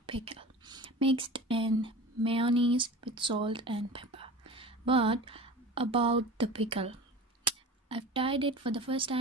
pickle, mixed in mayonnaise with salt and pepper. But about the pickle, I've tried it for the first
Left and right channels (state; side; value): normal; both; correlation 0.35